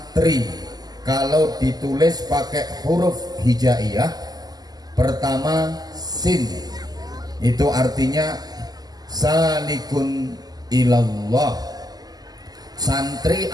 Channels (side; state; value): left; late; 0.19 ms